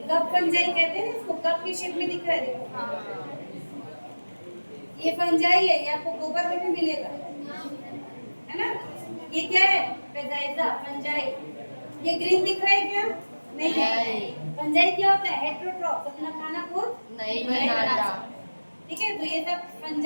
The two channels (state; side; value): inverted; both; correlation -1.00